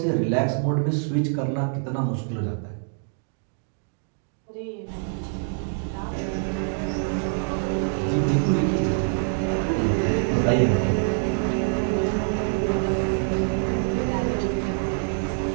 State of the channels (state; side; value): silent; left; 57 dB below the other